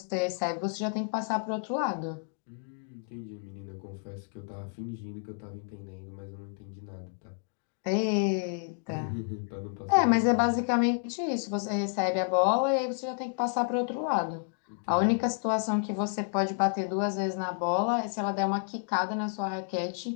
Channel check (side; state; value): right; silent; 57 dB below the other